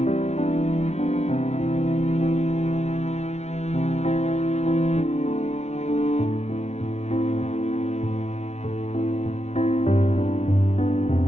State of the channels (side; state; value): right; late; 0.32 ms